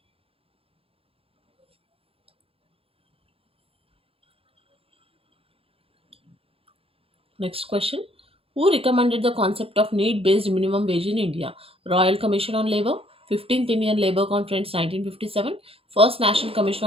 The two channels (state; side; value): late; left; 0.27 ms